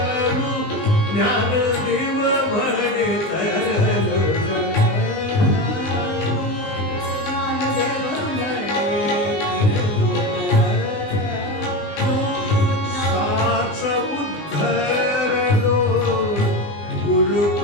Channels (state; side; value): late; right; 20 ms